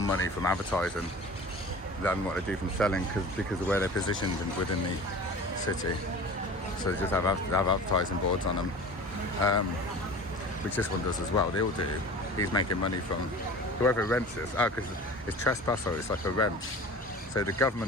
money from advertising than what they do from selling because of where they're positioned within the city. So they just have advertising boards on them, which this one does as well. They all do. He's making money from whoever rents this. Because it's trespass, so it's like a rent. So the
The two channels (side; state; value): both; normal; correlation 0.38